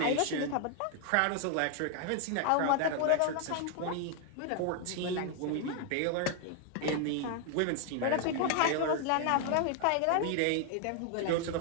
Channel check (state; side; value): different; both; correlation 0.00